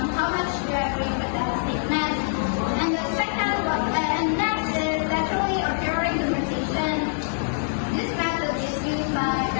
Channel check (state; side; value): silent; right; digital silence